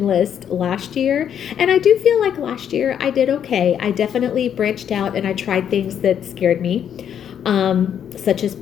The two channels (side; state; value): right; quieter; 8.9 dB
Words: list last year. And I do feel like last year I did okay. I definitely branched out and I tried things that scared me, such as